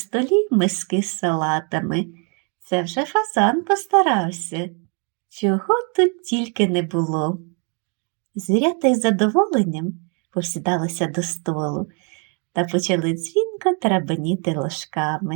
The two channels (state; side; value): quieter; left; 37.5 dB